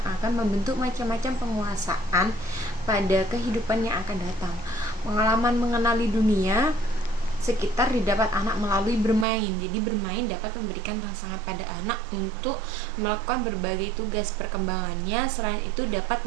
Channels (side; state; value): left; drops out; at 9.2 s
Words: akan membentuk macam-macam penguasaan pada kehidupan yang akan datang. Pengalaman mengenali dunia sekitar didapat anak melalui bermain. Jadi bermain dapat memberikan rangsangan pada anak untuk melakukan berbagai tugas perkembangannya. Selain itu dapat